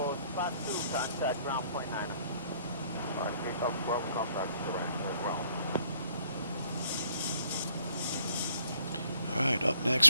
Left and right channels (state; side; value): inverted; both; correlation -0.63